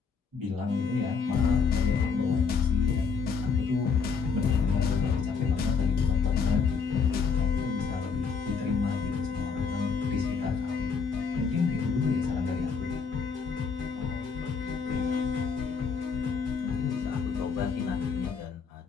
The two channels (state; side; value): quieter; right; 5.6 dB